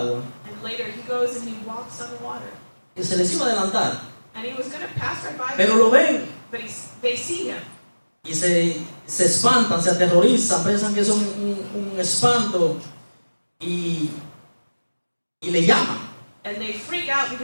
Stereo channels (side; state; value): both; inverted; correlation -1.00